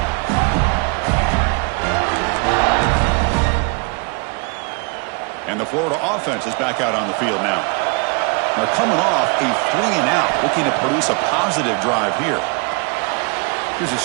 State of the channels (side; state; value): left; quieter; 32.7 dB